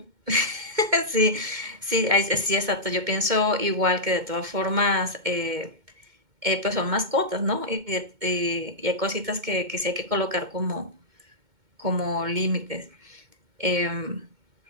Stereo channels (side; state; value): left; late; 2.2 ms